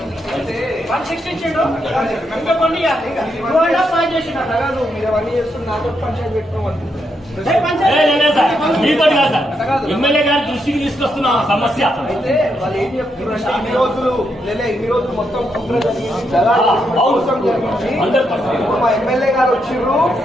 160 ఇచ్చాడు. ఇంకా కొన్ని 2.5 చేసినాడు. మీరు అవన్నీ చేస్తున్నారు, నాతో పంచాయతీ పెట్టుకోవాలి. మీతో కాదు సార్, ఎమ్మెల్యే గారి దృష్టికి తీసుకొస్తున్న సమస్య. అయితే వాళ్ళు ఏం చెప్తున్నారంటే ఇన్ని రోజులు మొత్తం మా ఎమ్మెల్యే గారు వచ్చిర్రు,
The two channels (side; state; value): both; normal; correlation 0.80